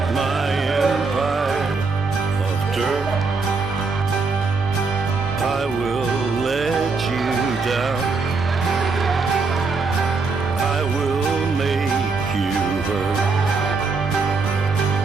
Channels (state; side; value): quieter; left; 4.2 dB